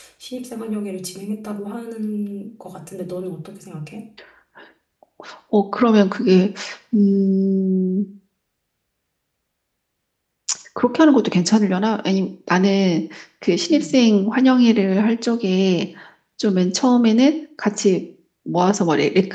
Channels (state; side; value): identical; both; correlation 1.00